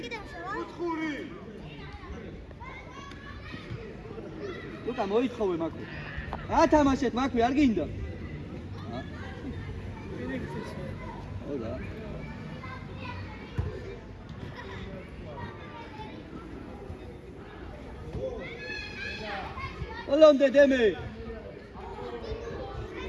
Luca, მოითხოვე მაქვე. ათამაშეთ მაქვე, არ გინდა? ოდა. Olonde deme.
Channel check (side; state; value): both; identical; correlation 1.00